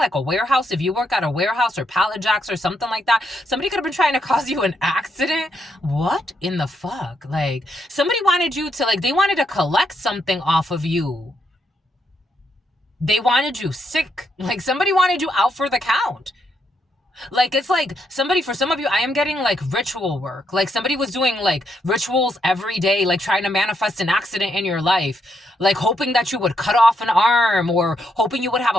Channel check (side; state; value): both; normal; correlation 0.78